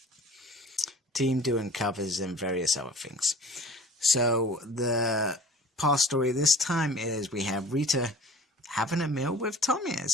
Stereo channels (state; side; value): normal; both; correlation 0.44